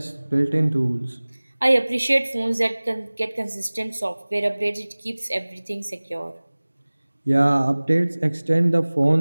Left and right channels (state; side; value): inverted; both; correlation -1.00